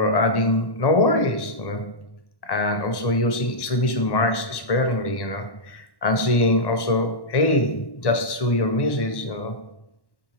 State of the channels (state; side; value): late; right; 1.1 ms